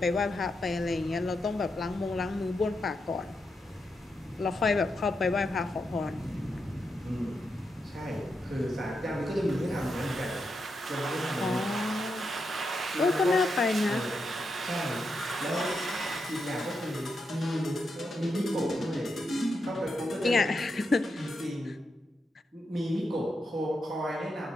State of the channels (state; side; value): normal; both; correlation 0.84